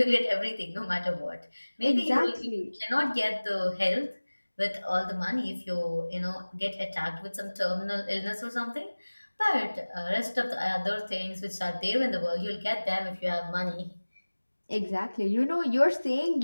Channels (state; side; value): inverted; both; correlation -1.00